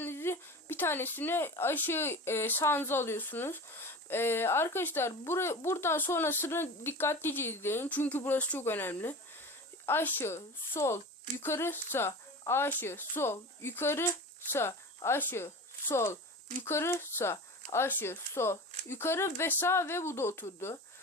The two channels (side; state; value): both; normal; correlation 0.32